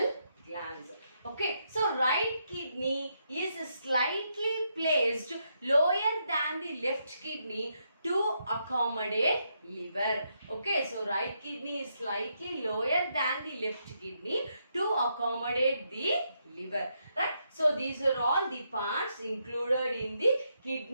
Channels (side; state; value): both; inverted; correlation -0.79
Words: glands. Okay, so right kidney is slightly placed lower than the left kidney to accommodate liver. Okay, so right kidney is slightly lower than the left kidney to accommodate the liver. Right? So these are all the parts included in the